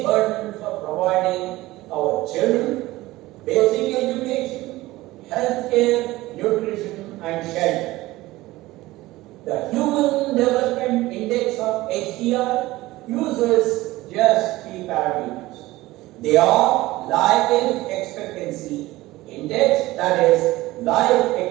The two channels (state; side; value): quieter; left; 18.3 dB